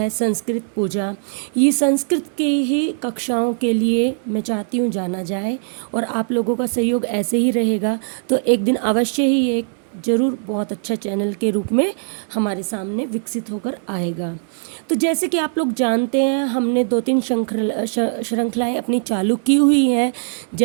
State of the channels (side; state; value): left; silent; digital silence